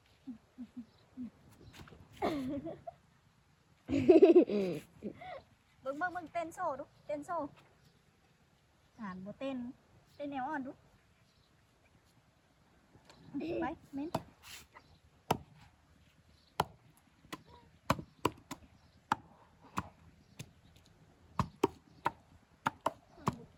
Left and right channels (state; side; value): identical; both; correlation 1.00